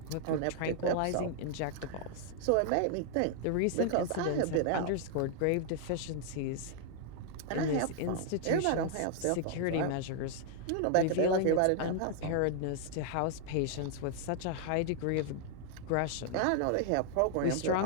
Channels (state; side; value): different; both; correlation 0.00